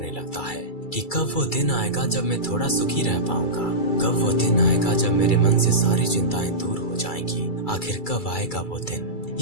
लगता है कि कब वो दिन आएगा जब मैं थोड़ा सुखी रह पाऊंगा। कब वो दिन आएगा जब मेरे मन से सारी चिंताएं दूर हो जाएंगी। आखिर कब आएगा वो दिन?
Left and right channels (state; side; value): late; right; 2.3 ms